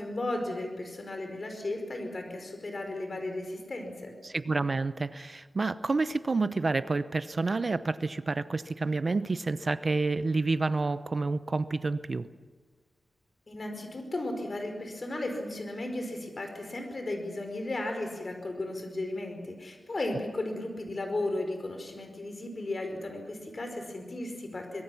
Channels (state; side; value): normal; both; correlation 0.94